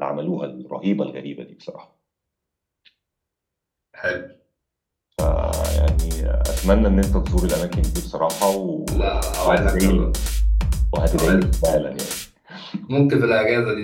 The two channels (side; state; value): both; identical; correlation 1.00